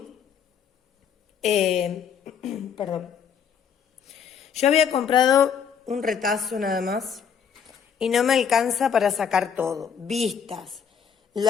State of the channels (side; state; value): right; quieter; 7.3 dB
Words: Perdón. Yo había comprado un retazo nada más y no me alcanza para sacar todo. Vistas,